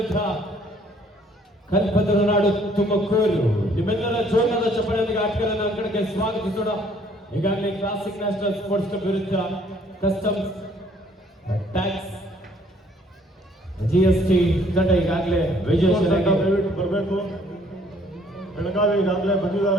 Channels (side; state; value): both; normal; correlation 0.61